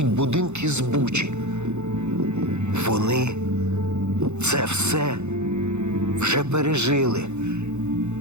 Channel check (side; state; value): left; late; 0.82 ms